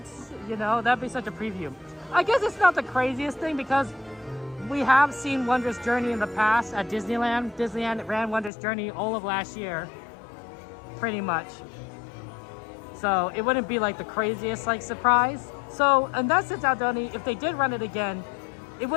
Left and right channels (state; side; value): drops out; right; at 8.5 s